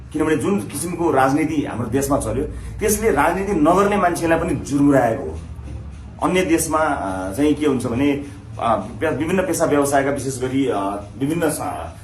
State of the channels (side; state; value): both; identical; correlation 1.00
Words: किनभने जुन किसिमको राजनीति हाम्रो देशमा चल्यो त्यसले राजनीति नगर्ने मान्छेलाई पनि जुर्मुराएको हो। अन्य देशमा चाहिँ के हुन्छ भने विभिन्न पेशा व्यवसायका विशेष गरी विभिन्न